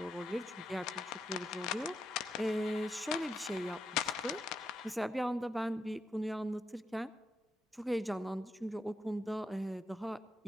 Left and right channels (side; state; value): both; normal; correlation 0.83